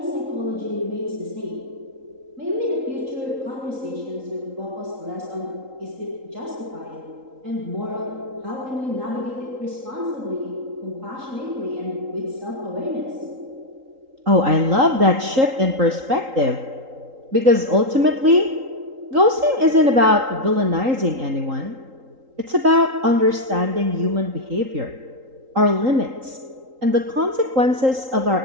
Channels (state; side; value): late; left; 3.8 ms